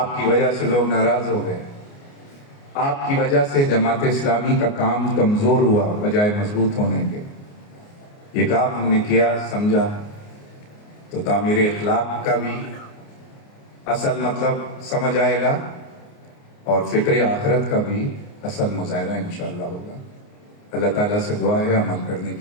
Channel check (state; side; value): late; right; 29 ms